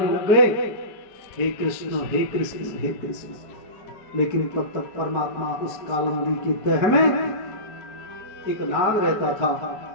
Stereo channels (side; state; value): right; late; 4.5 ms